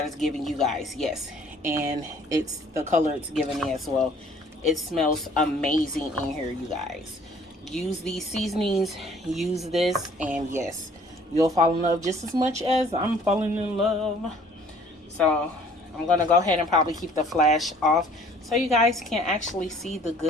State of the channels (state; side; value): normal; both; correlation 0.55